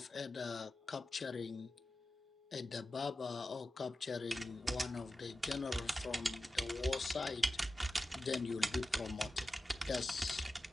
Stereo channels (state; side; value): normal; both; correlation 0.93